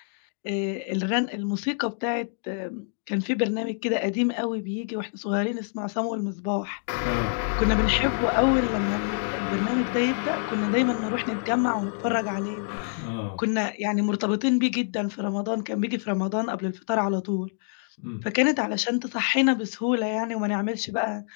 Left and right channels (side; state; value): right; silent; digital silence